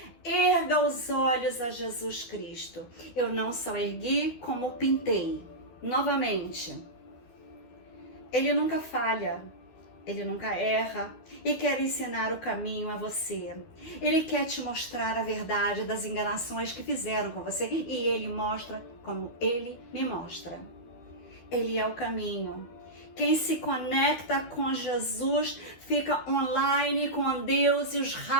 erga os olhos a Jesus Cristo. Eu não só ergui, como pintei. Novamente, Ele nunca falha, Ele nunca erra e quer ensinar o caminho a você. Ele quer te mostrar a verdade das enganações que fizeram com você e Ele mostra como Ele me mostra. Ele é o caminho. Quem se conecta com Jesus fica online com Deus e os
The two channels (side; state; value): right; late; 12 ms